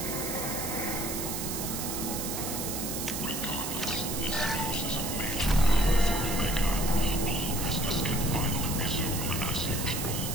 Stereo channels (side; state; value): right; noise; hiss, 4 dB below the sound